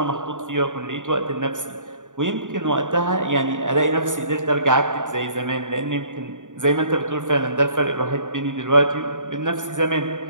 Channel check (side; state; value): left; late; 0.87 ms